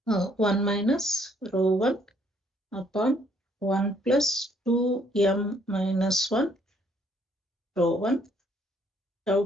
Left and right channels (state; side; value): normal; both; correlation 0.66